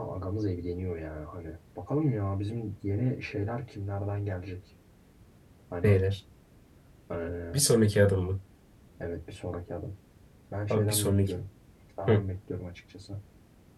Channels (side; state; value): both; identical; correlation 1.00